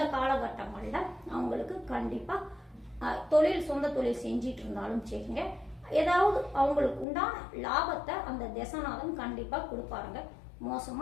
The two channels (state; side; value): drops out; right; at 7.1 s